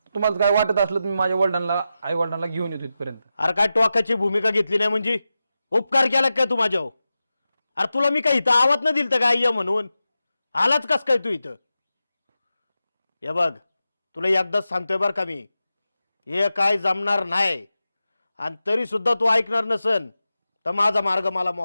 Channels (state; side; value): inverted; both; correlation -0.92